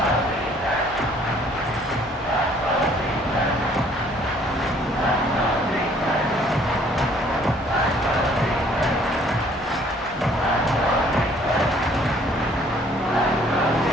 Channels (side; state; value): both; normal; correlation 0.60